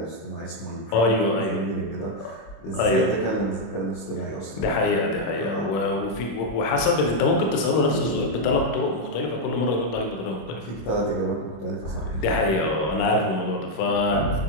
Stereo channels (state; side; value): late; right; 26 ms